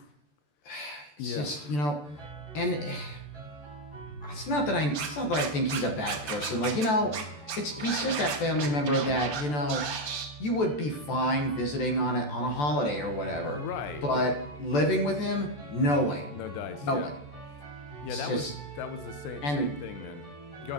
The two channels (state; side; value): late; right; 14 ms